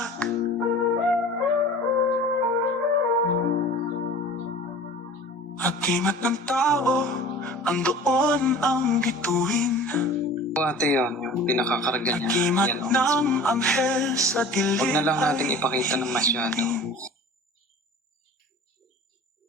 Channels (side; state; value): both; normal; correlation 0.41